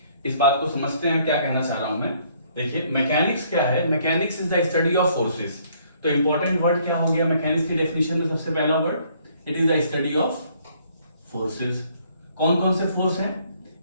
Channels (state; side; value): inverted; both; correlation -0.64